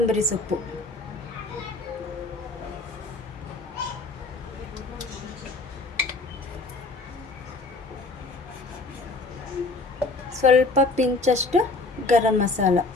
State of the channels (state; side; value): quieter; right; 3.5 dB